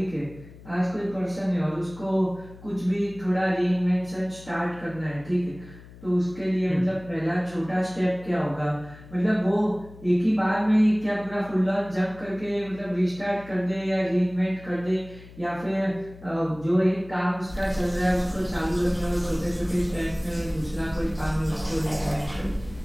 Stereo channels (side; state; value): left; noise; hum, 19 dB below the sound